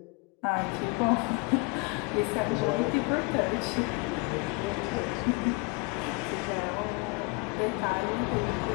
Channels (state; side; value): quieter; right; 28.9 dB